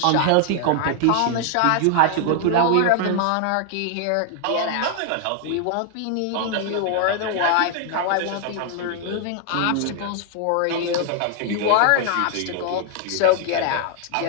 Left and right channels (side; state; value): both; different; correlation 0.00